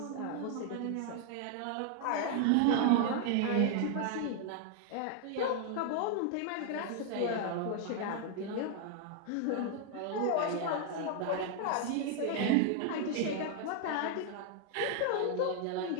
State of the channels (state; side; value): different; both; correlation 0.00